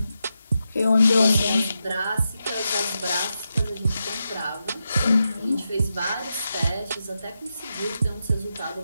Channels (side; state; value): both; inverted; correlation -0.87